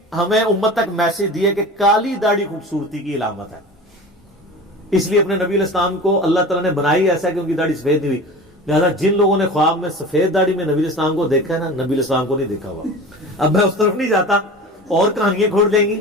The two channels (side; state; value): both; normal; correlation 0.35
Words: ہمیں امت تک میسج دی ہے کہ کالی داڑھی خوبصورتی کی علامت ہے. اس لیے اپنے نبی علیہ السلام کو اللہ تعالیٰ نے بنائی ایسا کہ ان کی داڑھی سفید نہیں ہوئی. لہذا جن لوگوں نے خواب میں سفید داڑھی میں نبی علیہ السلام کو دیکھا ہے نا، نبی علیہ السلام کو نہیں دیکھا ہوا. اب میں اس طرف نہیں جاتا، اور کہانیاں کھول دیں گی.